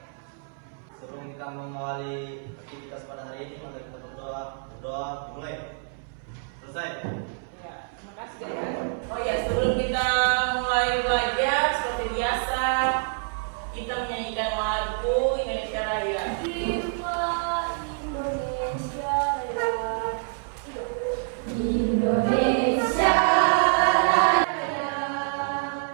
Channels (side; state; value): left; silent; 58 dB below the other